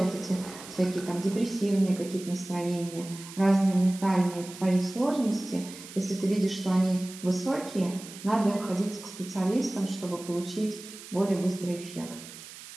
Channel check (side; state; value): right; noise; hiss, 15 dB below the sound